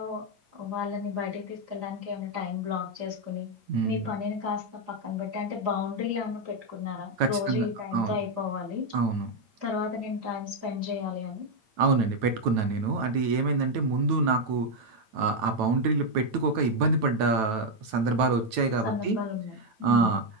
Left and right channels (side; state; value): left; late; 9.1 ms